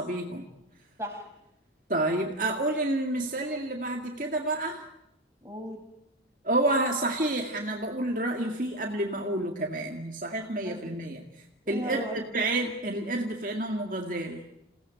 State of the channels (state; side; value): normal; both; correlation 0.19